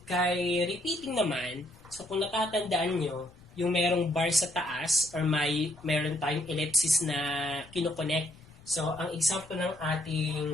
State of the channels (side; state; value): left; noise; rumble, 24 dB below the sound